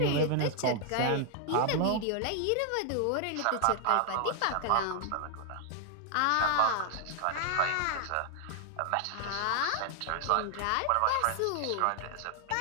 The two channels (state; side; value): different; both; correlation 0.00